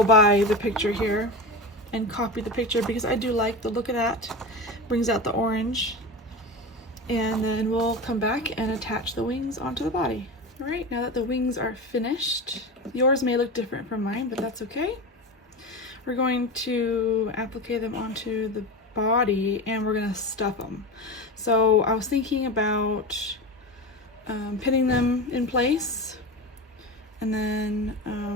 by the picture here and copy the picture because I do like the look of that. Brings out the orange, and then we'll come back and attach the wings onto the body. All right, now that the wings are finished, yours may look different from mine, but that's okay. We're going to apply them onto the body and we're gonna stuff them. So I was thinking about pinning them in place, and then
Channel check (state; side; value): normal; both; correlation 0.24